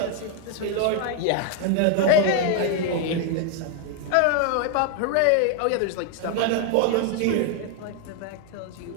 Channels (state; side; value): different; both; correlation 0.00